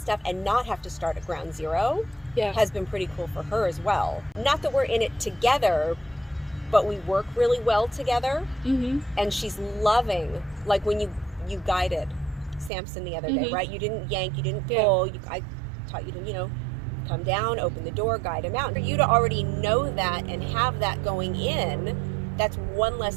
and not have to start at ground zero has been pretty cool for her as well. Not that we're in it together, but we work really well together. And she's loving, like when you guided Samson the other day, right? You didn't yank, you didn't pull. I taught you to, you know, come down, open the door, guide him out. For you to already know that and have that going in, that's one less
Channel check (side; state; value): left; drops out; at 12.7 s